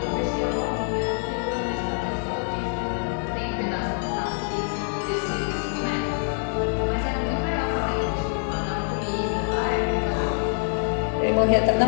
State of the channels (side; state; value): right; silent; 62 dB below the other